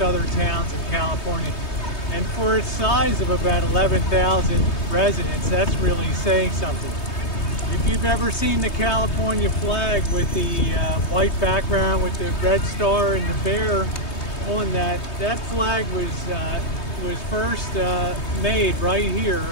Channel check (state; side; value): late; right; 3.2 ms